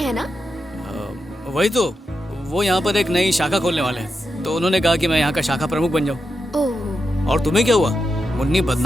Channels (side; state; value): both; normal; correlation 0.87